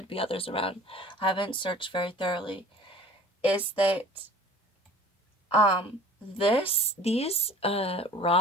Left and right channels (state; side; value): normal; both; correlation 0.46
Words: be others around, I haven't searched very thoroughly, is that these